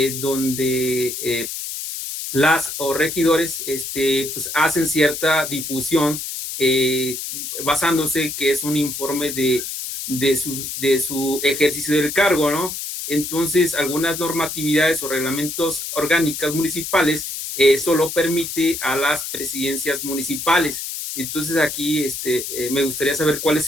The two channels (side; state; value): left; noise; hiss, 6 dB below the sound